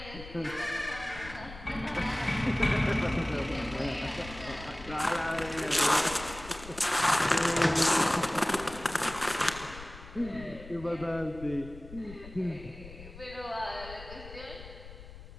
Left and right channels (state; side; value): noise; left; rumble, 15 dB below the sound